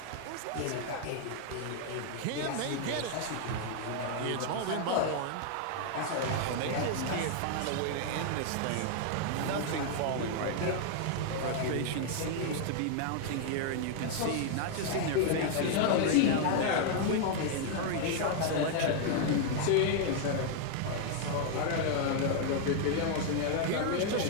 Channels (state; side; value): different; both; correlation 0.00